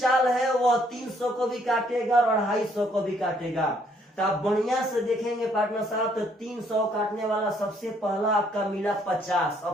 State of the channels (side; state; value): both; normal; correlation 0.67